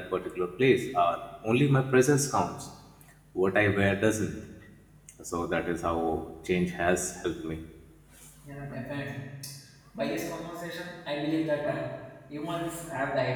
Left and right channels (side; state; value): both; identical; correlation 1.00